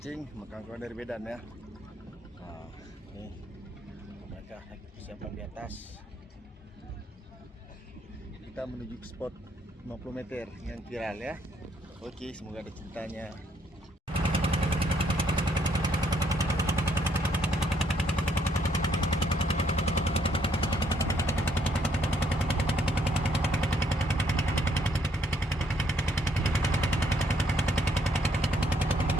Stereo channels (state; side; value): normal; both; correlation 0.70